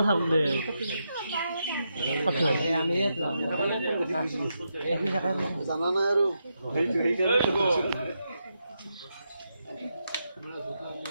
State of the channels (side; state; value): both; inverted; correlation -0.84